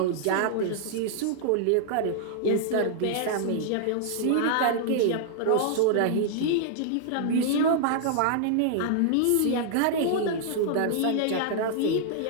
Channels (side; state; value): both; different; correlation -0.01